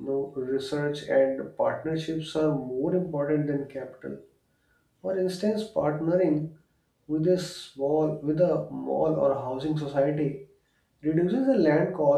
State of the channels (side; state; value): both; identical; correlation 1.00